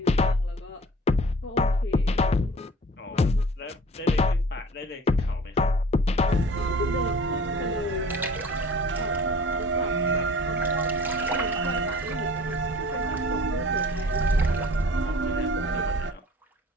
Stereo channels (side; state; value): both; normal; correlation 0.46